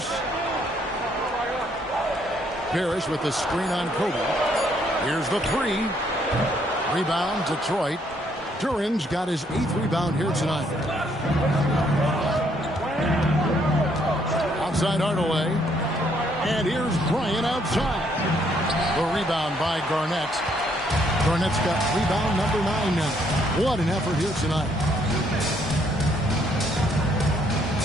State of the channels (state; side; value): normal; both; correlation 0.69